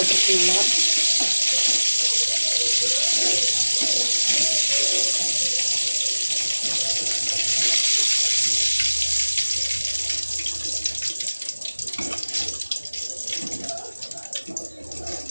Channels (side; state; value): both; inverted; correlation -1.00